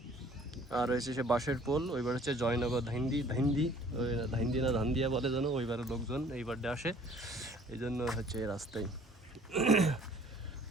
আর হচ্ছে সে বাঁশের পোল, ওইবার হচ্ছে জয়নগর ধাইন্দি না ধান্দিয়া বলে যেন, ওইবারে লোকজন এইবারটা আসে, এই জন্য হচ্ছে এই রাস্তায়।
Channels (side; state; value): both; normal; correlation 0.54